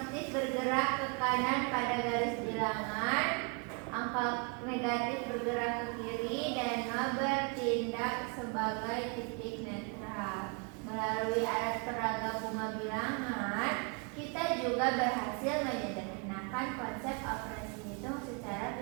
bergerak ke kanan pada garis bilangan, angka negatif bergerak ke kiri, dan nol bertindak sebagai titik netral. Melalui alat peraga bunga bilangan, kita juga berhasil menyederhanakan konsep operasi hitung secara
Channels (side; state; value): left; quieter; 33.3 dB